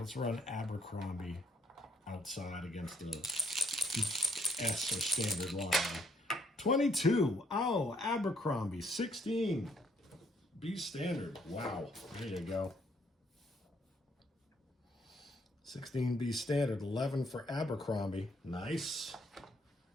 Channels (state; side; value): normal; both; correlation 0.69